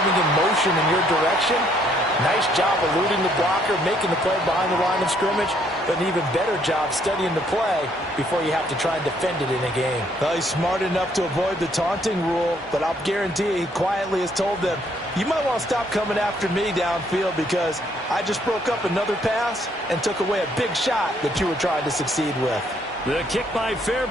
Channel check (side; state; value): both; normal; correlation 0.68